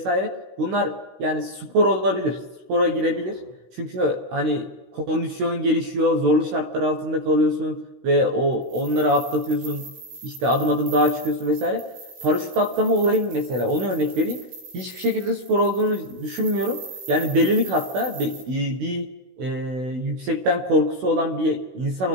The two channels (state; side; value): late; left; 16 ms